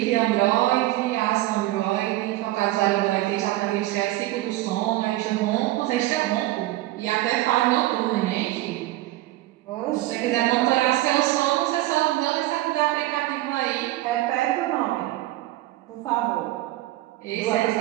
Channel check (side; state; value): left; quieter; 16.8 dB